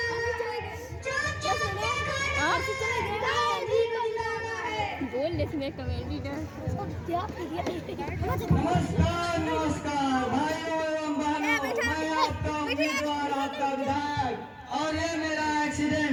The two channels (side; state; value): both; identical; correlation 1.00